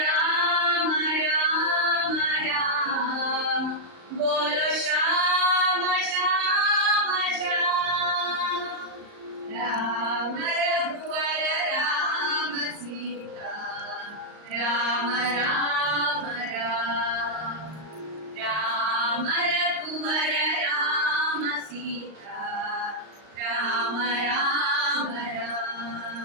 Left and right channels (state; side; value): late; left; 38 ms